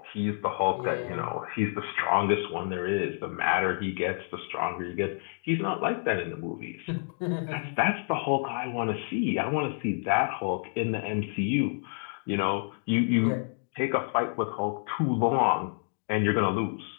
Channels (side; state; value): right; silent; digital silence